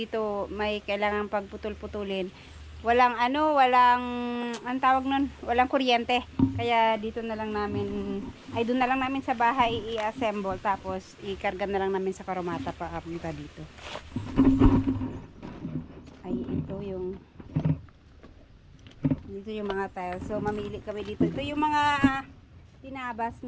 may kailangan pagputol-putulin. Walang ang tawag nun, walang kuryente. Kaya dito na lang namin, doon na lang namin sa bahay i-assemble tapos ikarga na lang namin sa karomata pa apunta dito. Ay, dito yung mga tiles. So mamili kami dito. Ito yung mga tinabas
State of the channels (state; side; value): identical; both; correlation 1.00